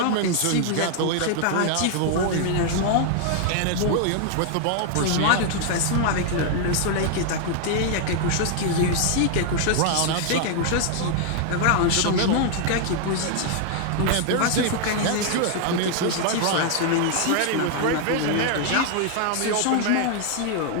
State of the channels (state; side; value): different; both; correlation 0.00